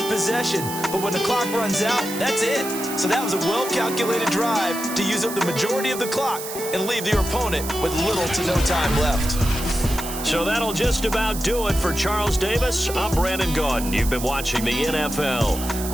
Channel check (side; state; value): right; noise; hiss, 9 dB below the sound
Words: a possession, but when the clock runs out, that's it. So that was a well-calculated drive to use up the majority of the clock and leave your opponent with little to no time left. So that'll just about do it for Charles Davis. I'm Brandon Gaudin. You've been watching the NFL